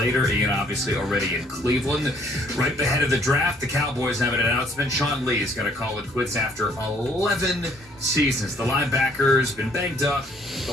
Ian obviously already in Cleveland. Right ahead of the draft, the Cowboys have an announcement. Sean Lee is going to call it quits after 11 seasons. The linebacker's been banged up the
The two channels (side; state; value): both; normal; correlation 0.63